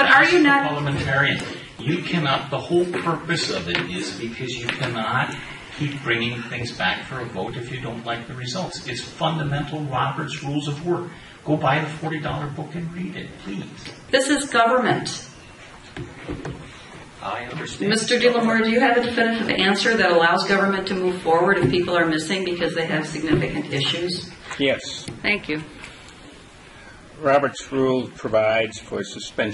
are you not parliamentarian? You cannot. The whole purpose of it is because you cannot keep bringing things back for a vote if you don't like the results. It's fundamental Robert's Rules of Order. Go buy the $40 book and read it, please. This is government. I understand. Mr. DeLamore, do you have a definitive answer that allows government to move forward if people are missing because they have significant issues? Yes. Thank you. Robert's Rule provides for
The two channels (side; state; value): both; identical; correlation 1.00